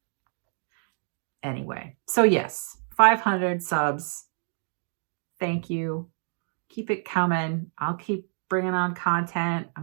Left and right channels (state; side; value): silent; left; 60 dB below the other